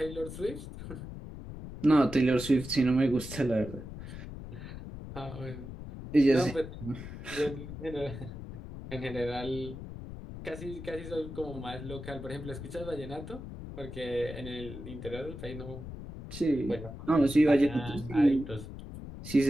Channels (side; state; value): left; noise; rumble, 11 dB below the sound